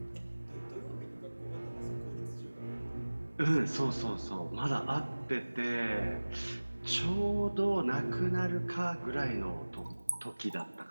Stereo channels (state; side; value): inverted; both; correlation -1.00